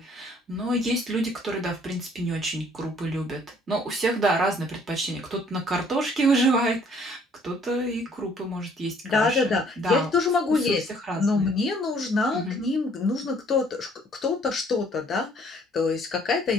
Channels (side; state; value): both; normal; correlation 0.60